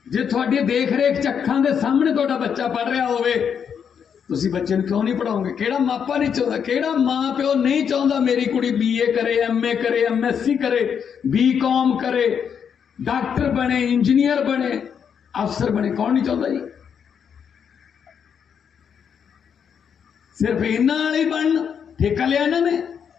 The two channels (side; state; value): right; quieter; 7.4 dB